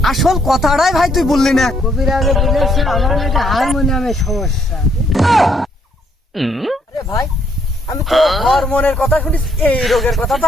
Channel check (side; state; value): both; normal; correlation 0.70